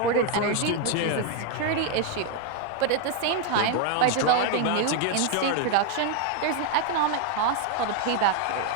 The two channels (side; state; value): both; different; correlation 0.01